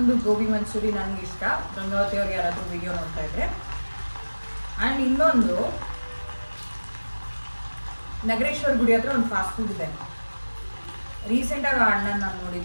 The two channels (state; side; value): inverted; both; correlation -1.00